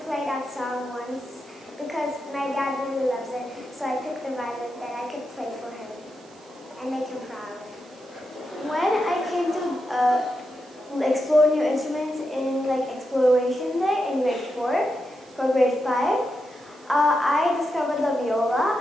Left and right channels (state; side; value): noise; right; hiss, 29 dB below the sound